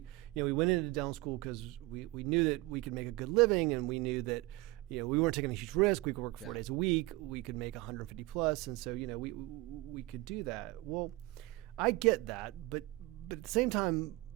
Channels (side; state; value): left; quieter; 20.9 dB